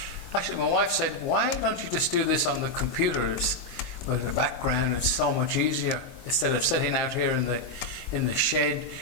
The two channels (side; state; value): right; late; 22 ms